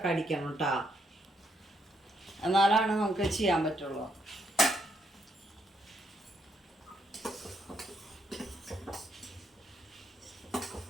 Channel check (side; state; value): both; normal; correlation 0.75